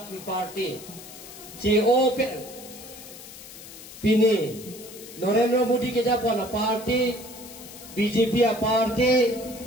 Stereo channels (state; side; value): noise; left; hiss, 16 dB below the sound